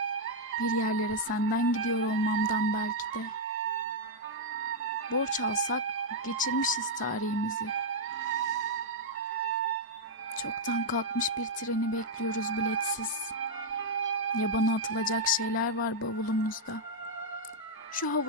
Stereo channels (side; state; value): both; normal; correlation -0.02